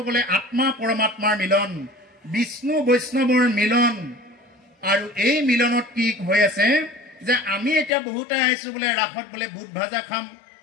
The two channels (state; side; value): drops out; right; at 7.9 s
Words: গ'লে আত্মা পৰমাত্মাৰ মিলন, বিষ্ণু বৈষ্ণৱৰ মিলন। আৰু এই মিলনত কি হৈ আছে যে আমি এতিয়া বহুতে আহিছো বোলে ৰাসত বোলে বুট ভাজা খাম,